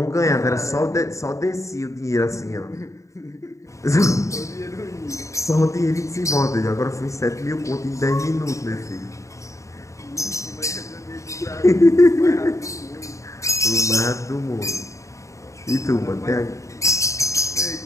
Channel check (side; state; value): right; late; 0.15 ms